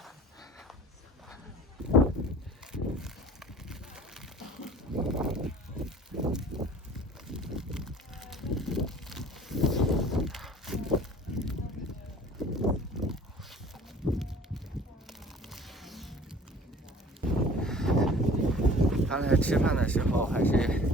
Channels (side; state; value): both; normal; correlation 0.47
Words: 刚才吃饭的时候还是